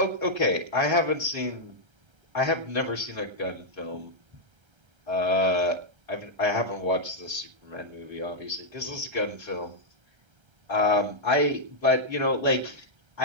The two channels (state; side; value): late; left; 1.3 ms